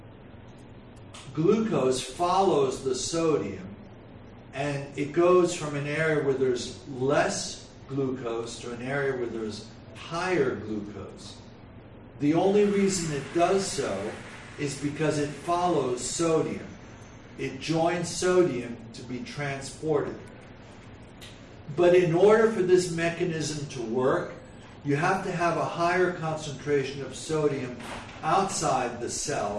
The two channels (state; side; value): identical; both; correlation 1.00